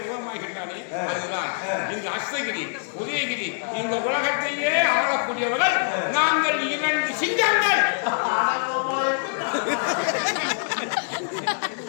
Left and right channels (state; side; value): silent; right; digital silence